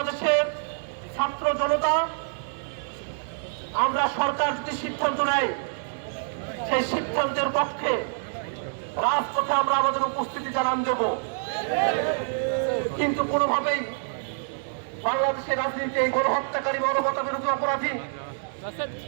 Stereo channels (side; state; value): left; silent; digital silence